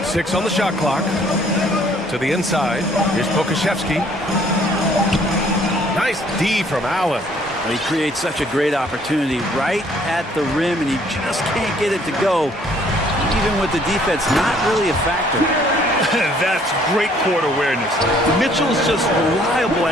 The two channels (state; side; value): normal; both; correlation 0.61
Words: 6 on the shot clock. To the inside. Here's Pokashevsky. Nice D from Allen. He creates such a great opportunity right at the rim, and he just can't get it to go. Even with the defense not really a factor. That's great court awareness. Mitchell's just reliable